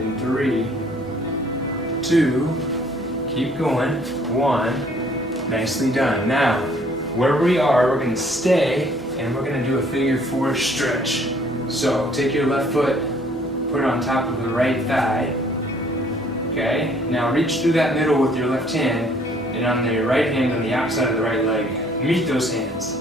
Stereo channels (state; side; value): normal; both; correlation 0.60